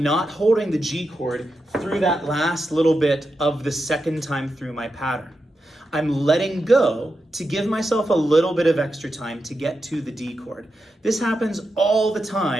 not holding the G chord through that last little bit of the second time through my pattern. I'm letting go to give myself a little bit of extra time to get to the D chord. This happens all the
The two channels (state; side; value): normal; both; correlation 0.88